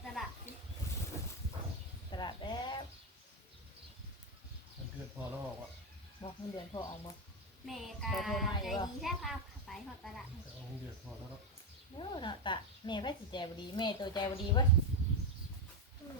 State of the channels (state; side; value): normal; both; correlation 0.08